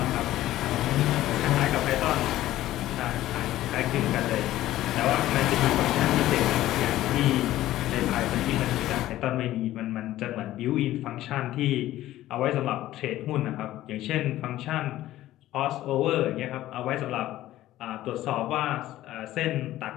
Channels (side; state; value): right; quieter; 14.7 dB